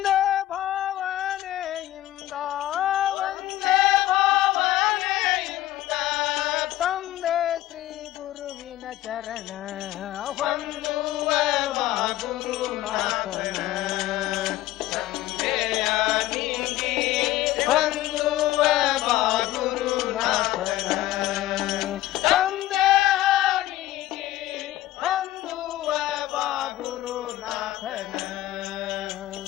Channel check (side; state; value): right; quieter; 14.9 dB